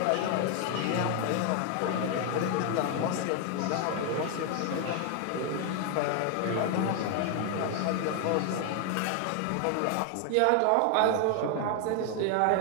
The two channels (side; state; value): both; different; correlation 0.00